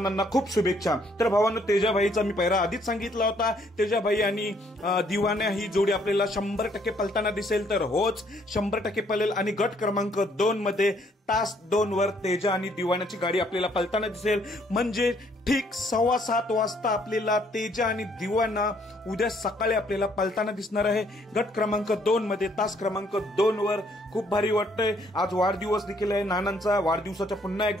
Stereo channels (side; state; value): both; normal; correlation 0.66